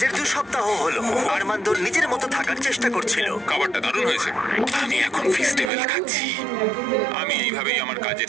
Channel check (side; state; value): left; drops out; at 5.7 s